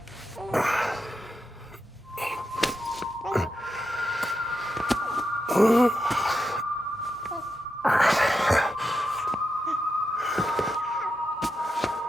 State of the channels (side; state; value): both; normal; correlation 0.86